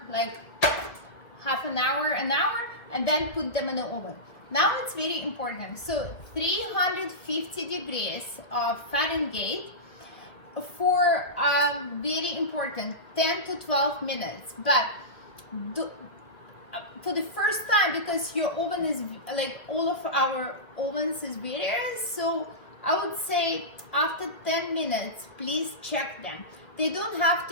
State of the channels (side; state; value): right; late; 2.0 ms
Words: like half an hour, and then put them in the oven. Now it's very important. So 350 degrees of Fahrenheit for very important 10 to 12 minutes. But for the first time, because your oven is like all of our ovens is various, so I would say after 10 minutes, please check them. They don't have